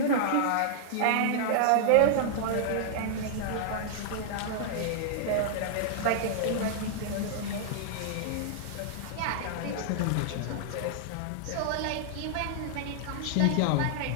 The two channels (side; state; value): both; different; correlation -0.01